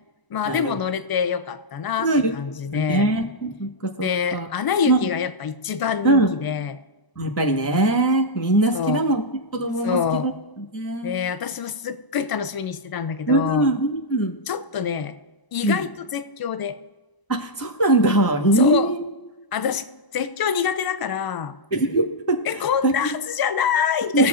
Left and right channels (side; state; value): right; late; 1.0 ms